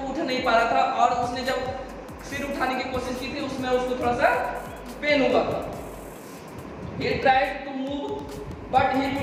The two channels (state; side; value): identical; both; correlation 1.00